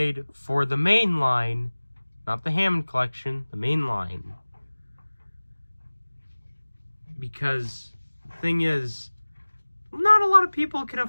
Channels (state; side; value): inverted; both; correlation -1.00